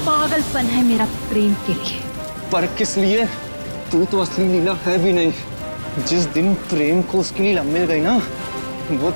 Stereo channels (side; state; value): both; inverted; correlation -1.00